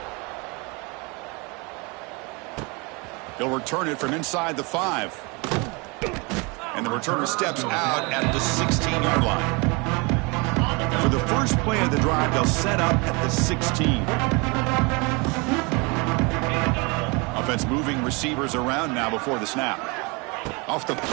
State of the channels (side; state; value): left; quieter; 29.1 dB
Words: He'll return it from inside the 5. And the returner steps out at the 16-yard line. For the first play of the drive, they'll set up at the 16. Offense moving receivers around now before the snap. Off the